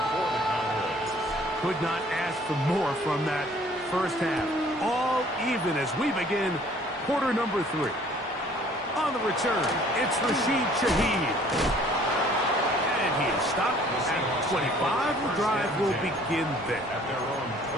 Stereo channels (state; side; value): normal; both; correlation 0.56